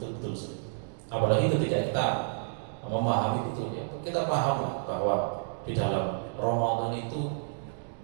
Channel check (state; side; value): silent; left; digital silence